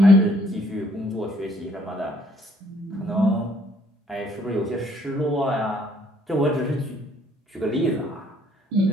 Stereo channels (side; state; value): both; normal; correlation 0.64